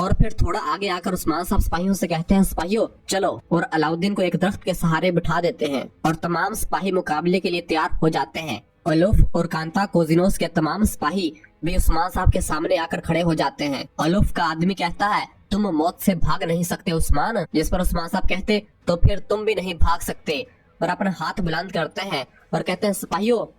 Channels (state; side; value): identical; both; correlation 1.00